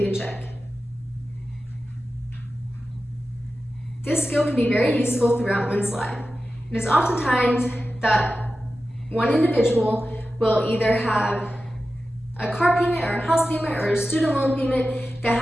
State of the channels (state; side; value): normal; both; correlation 0.93